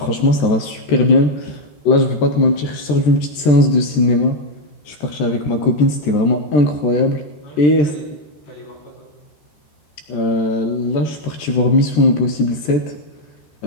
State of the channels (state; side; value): late; right; 14 ms